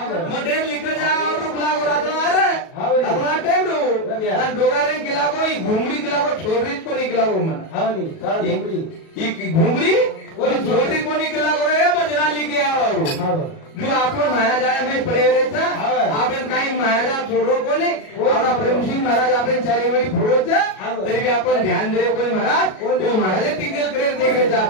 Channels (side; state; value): right; late; 37 ms